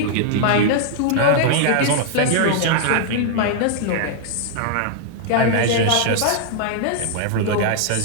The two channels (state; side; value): different; both; correlation -0.01